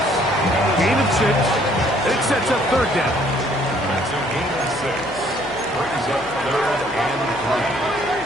gain of 6. It sets up 3rd down. That's a gain of 6. Brings up 3rd and 3.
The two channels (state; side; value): noise; left; hum, 17 dB below the sound